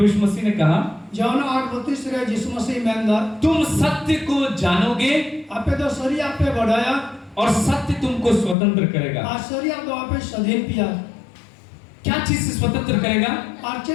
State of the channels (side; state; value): right; drops out; at 8.6 s